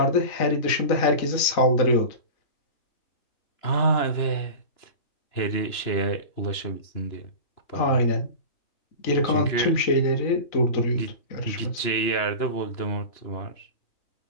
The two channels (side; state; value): right; late; 2.9 ms